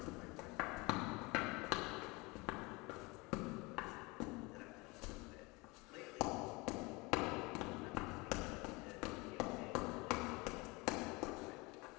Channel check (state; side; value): quieter; right; 25.4 dB